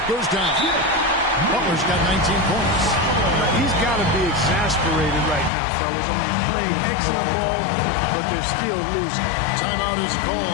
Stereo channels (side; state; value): right; drops out; at 5.5 s